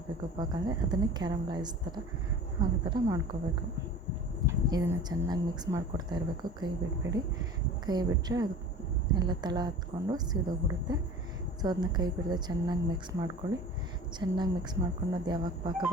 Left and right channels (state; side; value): normal; both; correlation 0.40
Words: ಪಾಕ ಅಂದರೆ ಅದನ್ನೇ ಕ್ಯಾರಮಲೈಸ್ ಥರ ಆಗೋ ಥರ ಮಾಡ್ಕೋಬೇಕು. ಇದನ್ನು ಚೆನ್ನಾಗಿ ಮಿಕ್ಸ್ ಮಾಡಿಕೊಡ್ತಾ ಇರಬೇಕು. ಕೈ ಬಿಡಬೇಡಿ. ಕೈ ಬಿಟ್ಟರೆ ಅದು ಎಲ್ಲ ತಳ ಹತ್ಕೊಂಡು ಸೀದೋಗ್ಬಿಡುತ್ತೆ. ಸೊ ಅದನ್ನ ಕೈ ಬಿಡದೆ ಚೆನ್ನಾಗಿ ಮಿಕ್ಸ್ ಮಾಡ್ಕೊಳ್ಳಿ. ಚೆನ್ನಾಗಿ ಮಿಕ್ಸ್ ಮಾಡ್ಕೊಂಡು ಅದು ಯಾವಾಗ ಪಾಕ